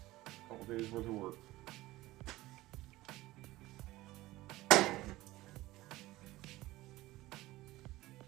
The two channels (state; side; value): quieter; left; 17.9 dB